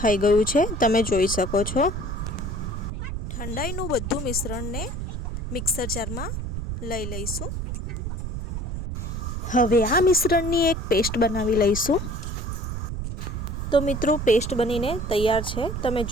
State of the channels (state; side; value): noise; right; rumble, 4 dB below the sound